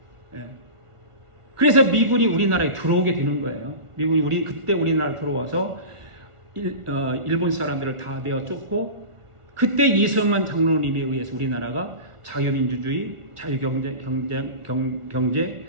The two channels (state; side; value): late; left; 1.4 ms